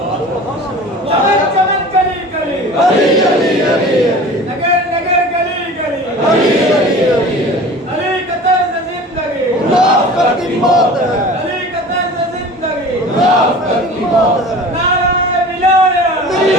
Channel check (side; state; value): both; normal; correlation 0.40